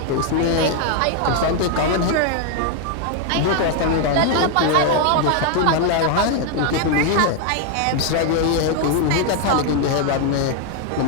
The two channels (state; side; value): different; both; correlation 0.00